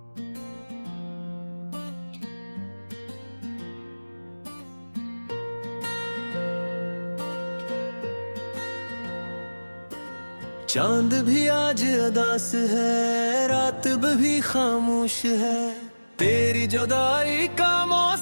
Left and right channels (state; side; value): inverted; both; correlation -1.00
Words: चांद भी आज अदास है, रात भी खामोश है, तेरी जुदाई का